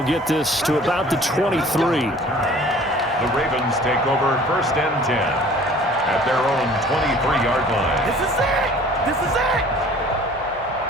get this to about the 23. The Ravens take over 1st and 10 at their own 23-yard line. This is it! This is it!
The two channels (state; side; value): noise; left; hum, 23 dB below the sound